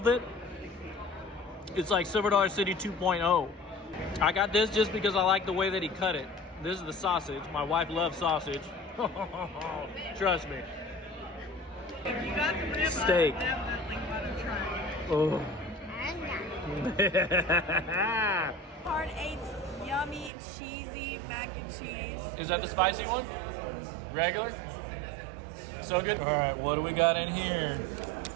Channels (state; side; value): drops out; left; at 20.3 s